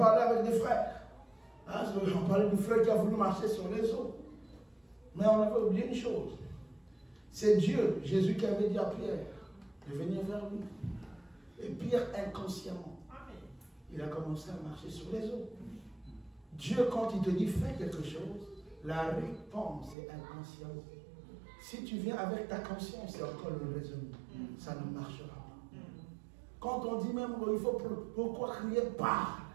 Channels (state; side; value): drops out; left; at 20.0 s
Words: avec des frères. Hein, on parlait du frère qui a voulu marcher sur les eaux. Mais on avait oublié une chose. C'est Dieu, Jésus, qui avait dit à Pierre de venir vers lui. Et Pierre, inconsciemment, il a commencé à marcher sur les eaux. Dieu, quand il te dit fais quelque chose, la réponse est inconsciente. Si tu viens avec ta conscience, c'est encore le raisonnement. Ça ne marchera pas. Quand on dit même qu'il faut pourquoi crier parle,